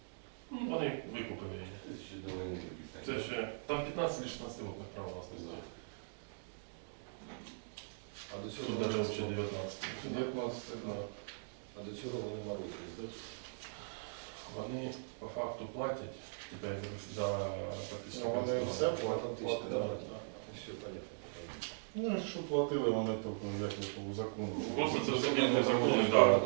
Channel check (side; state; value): left; silent; digital silence